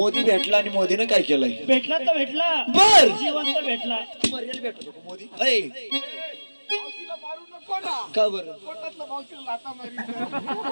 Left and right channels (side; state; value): both; inverted; correlation -1.00